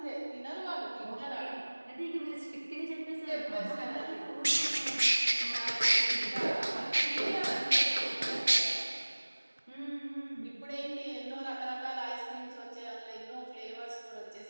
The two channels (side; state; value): both; inverted; correlation -1.00